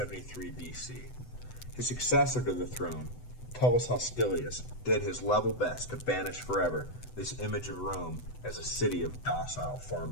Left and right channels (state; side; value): late; right; 8.0 ms